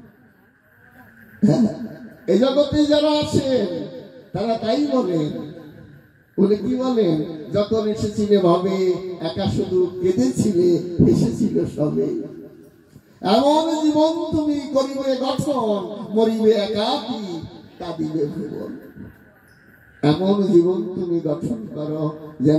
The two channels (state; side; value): identical; both; correlation 1.00